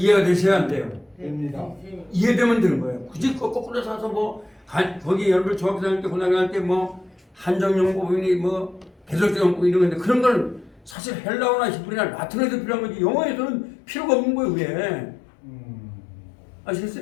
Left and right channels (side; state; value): right; drops out; at 11.0 s